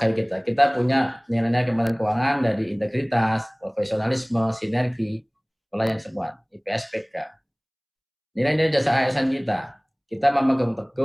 kita. Kita punya nilai-nilai Kementerian Keuangan dari integritas, profesionalisme, sinergi, pelayanan semua, IPSPK. Nilai-nilai jasa ASN kita. Kita memegang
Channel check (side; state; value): both; identical; correlation 1.00